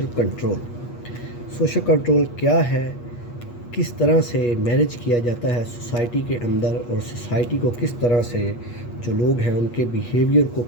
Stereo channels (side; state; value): right; late; 8.4 ms